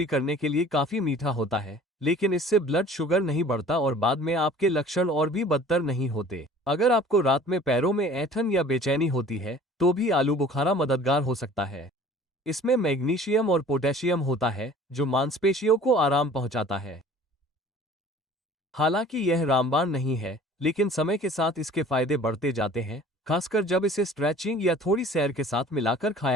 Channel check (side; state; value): both; normal; correlation 0.48